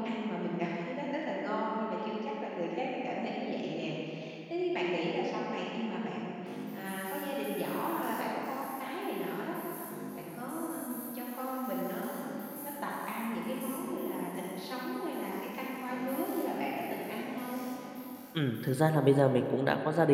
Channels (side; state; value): both; identical; correlation 1.00